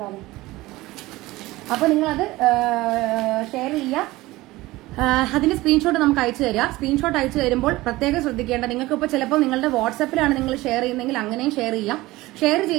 അപ്പൊ നിങ്ങളത് ഷെയർ ചെയ്യുക. അതിന്റെ സ്ക്രീൻഷോട്ട് നമുക്ക് അയച്ചു തരിക. സ്ക്രീൻഷോട്ട് അയച്ചു തരുമ്പോൾ പ്രത്യേകം ശ്രദ്ധിക്കേണ്ട, നിങ്ങൾക്ക് ഇപ്പോൾ ചിലപ്പോൾ നിങ്ങളുടെ വാട്സാപ്പിലാണ് നിങ്ങൾ ഷെയർ ചെയ്യുന്നതെങ്കിൽ അങ്ങനെയും ഷെയർ ചെയ്യാം. ഷെയർ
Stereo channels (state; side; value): quieter; left; 19.0 dB